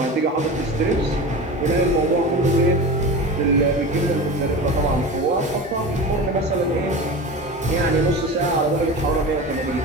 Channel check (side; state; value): both; normal; correlation 0.30